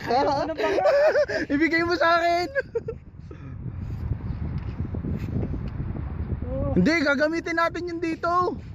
Ibigay mo sa akin. Hindi, gagamitin natin yun dito.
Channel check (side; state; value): both; identical; correlation 1.00